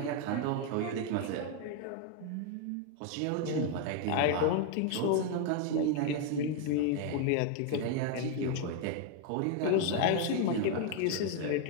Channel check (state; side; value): different; both; correlation 0.01